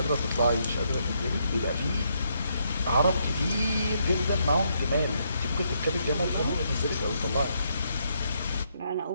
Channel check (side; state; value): both; inverted; correlation -0.76